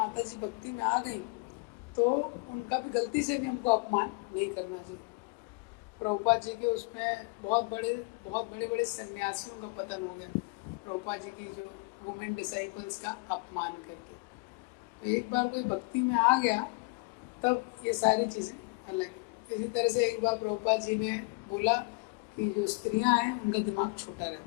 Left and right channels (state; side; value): quieter; right; 29.2 dB